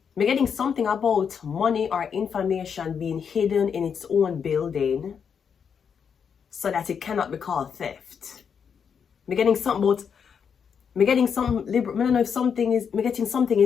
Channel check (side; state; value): right; quieter; 6.9 dB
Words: I'm getting something about money or information being hidden in its own building so that it cannot be called theft. I'm getting something about, I'm getting some, I don't know if something is, I'm getting something